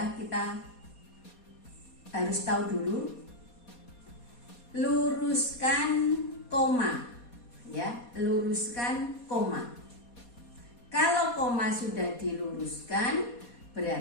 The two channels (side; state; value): right; late; 4.2 ms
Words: kita harus tahu dulu, luruskan koma, ya, luruskan koma. Kalau koma sudah diluruskan,